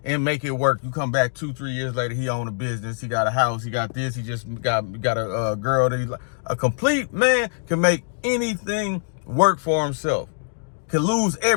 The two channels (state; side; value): silent; right; digital silence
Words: and make it work. You come back 2-3 years later, he own a business, he got a house, he got this, he just got a girl that he like. A complete man can make anything work for himself, can lose